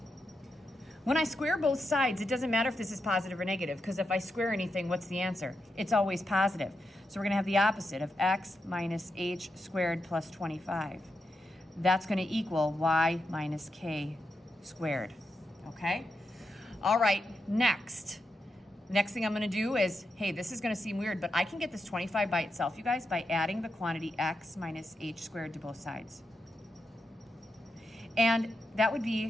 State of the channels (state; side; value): normal; both; correlation 0.86